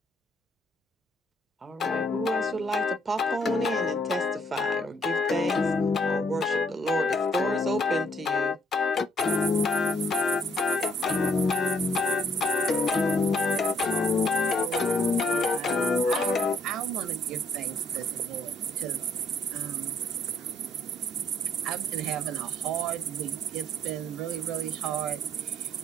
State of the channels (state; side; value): normal; both; correlation 0.66